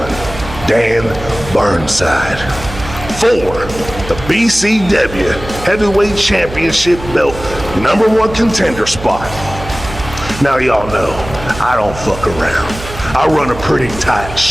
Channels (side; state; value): right; noise; hum, 12 dB below the sound